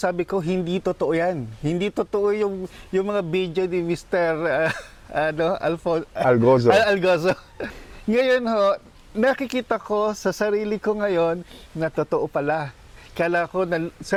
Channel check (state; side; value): identical; both; correlation 1.00